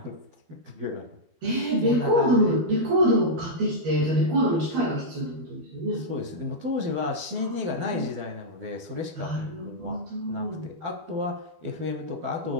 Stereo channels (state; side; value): late; left; 12 ms